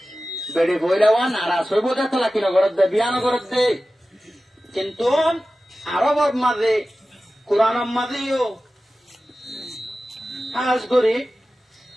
বেড়ে বইলে নারাজ হইব দেখো লাকি নগরত দে বিয়া নগরত দে কিন্তু আরবর মাঝে কোরআনের মাঝেও কাজ করি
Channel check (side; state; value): both; normal; correlation 0.95